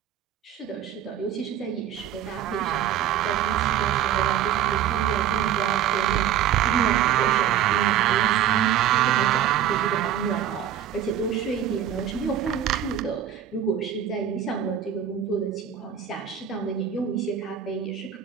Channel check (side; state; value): left; quieter; 9.9 dB